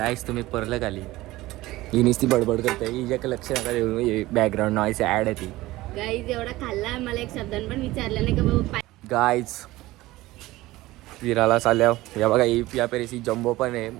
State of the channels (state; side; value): quieter; left; 18.1 dB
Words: तुम्ही परलं खाली. ही नुसती बडबड करते. हिच्या लक्ष नका देऊ. बॅकग्राऊंड नॉईस ऍड आहे ती. गाईज एवढा खाल्ला मला एक शब्द पण विचारलं नाही का बाबा. गाईज फिरायला चालल्या. या बघा या पेरेसी जम्बो पण आहे